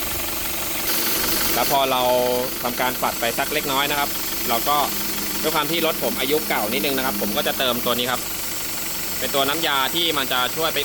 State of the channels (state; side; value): identical; both; correlation 1.00